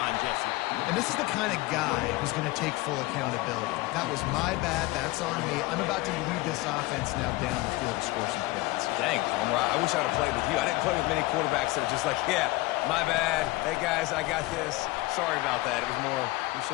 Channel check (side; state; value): right; quieter; 20.6 dB